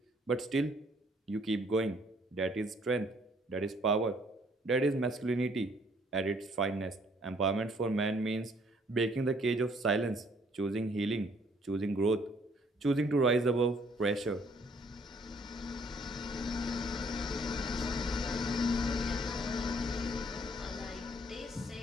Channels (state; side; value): normal; both; correlation 0.63